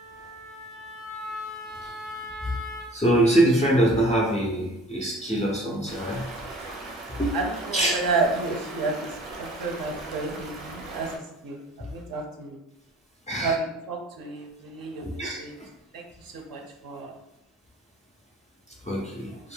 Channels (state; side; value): normal; both; correlation 0.50